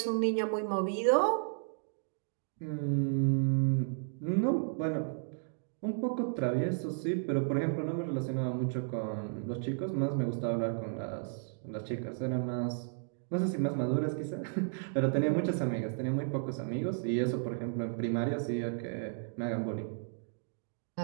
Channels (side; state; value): left; silent; digital silence